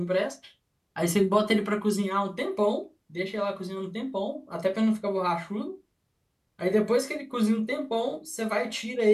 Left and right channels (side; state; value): both; identical; correlation 1.00